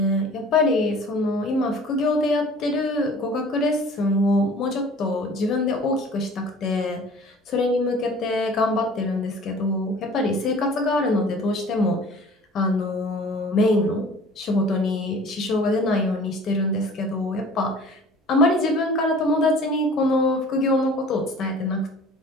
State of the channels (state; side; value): normal; both; correlation 0.46